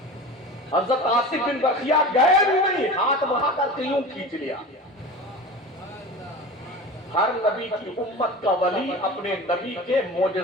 حضرت عاصم بن برقیہ گئے بھی نہیں، ہاتھ بڑھا کر کے یوں کھینچ لیا۔ ہر نبی کی امت کا ولی اپنے نبی کے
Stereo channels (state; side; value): normal; both; correlation 0.33